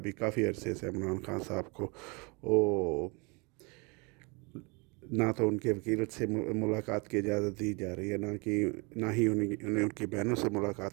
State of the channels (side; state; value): left; quieter; 30.1 dB